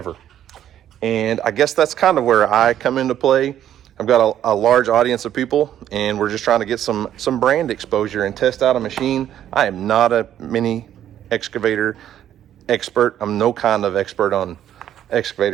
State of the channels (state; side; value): quieter; left; 10.9 dB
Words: And I guess that's kind of where I come into play. I've got a large audience of people, and we're just trying to get some brand exposure and test out a machine. I am not a mini excavator expert. I'm no kind of expert on